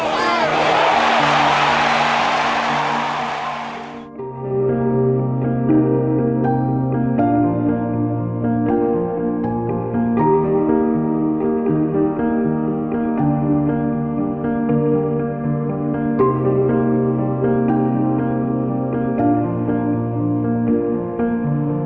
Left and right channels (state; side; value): identical; both; correlation 1.00